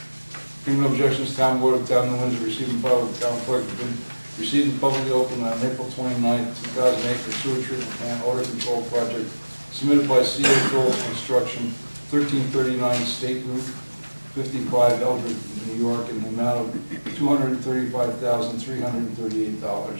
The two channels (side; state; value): both; inverted; correlation -1.00